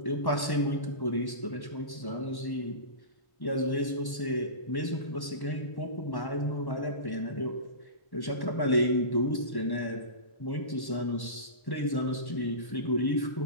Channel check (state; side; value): late; right; 1.1 ms